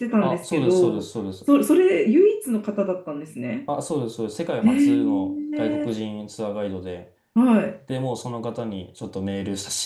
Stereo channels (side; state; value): both; identical; correlation 1.00